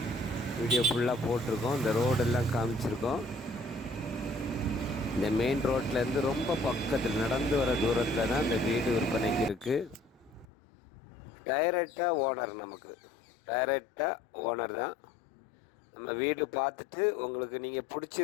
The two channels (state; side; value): drops out; right; at 10.5 s